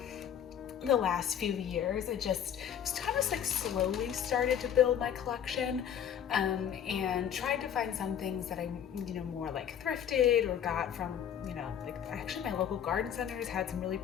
the last few years. It just kind of like slowly started to build my collection, and tried to find some things that I more like thrifted or got from like actually my local garden centers had some really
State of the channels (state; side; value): quieter; right; 9.1 dB